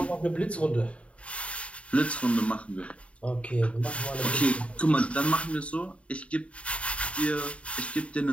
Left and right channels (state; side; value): late; right; 0.063 ms